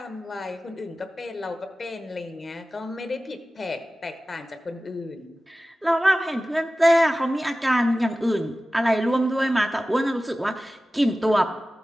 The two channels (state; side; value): normal; both; correlation 0.96